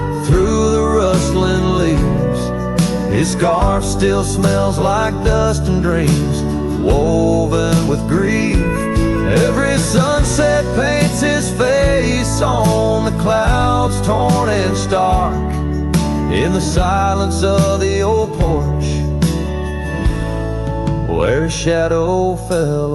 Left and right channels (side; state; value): both; identical; correlation 1.00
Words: through the rustling leaves. His scarf still smells like dust and dreams, woven with grief. Every sunset paints his face on the clouds, torn and stark. In the silence of the old porch, where his shadow fell